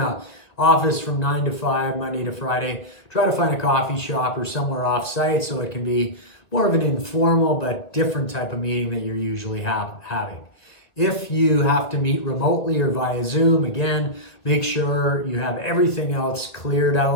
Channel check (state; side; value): late; right; 2.0 ms